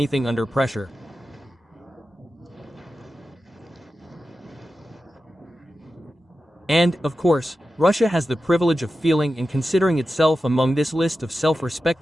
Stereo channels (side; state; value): both; normal; correlation 0.92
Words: under pressure. And, of course, Russia has the privilege of feeling and considering itself among this list of